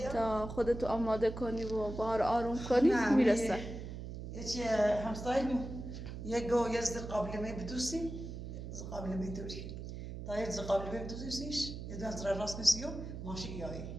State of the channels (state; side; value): noise; right; hum, 8 dB below the sound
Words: تا خودتو آماده کنی و بهار آروم کنی میرسه یه چی همسایمون یه گو یه قابل می بدوسی قابل می دوری تا یه قبل بیم دوزیش یه دو از راست نسیو ماشی یایی